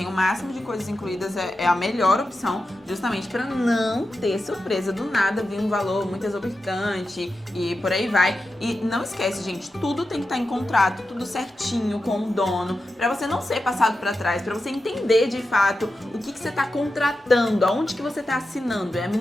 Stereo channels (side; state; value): both; normal; correlation 0.90